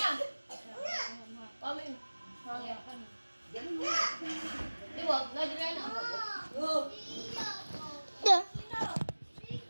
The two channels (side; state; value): both; inverted; correlation -1.00